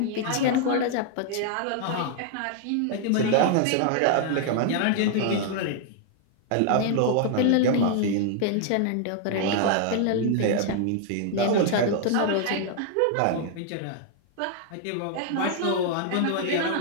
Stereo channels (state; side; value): different; both; correlation 0.00